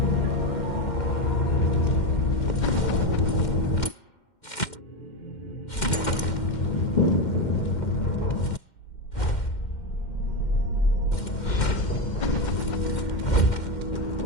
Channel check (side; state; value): right; late; 2.1 ms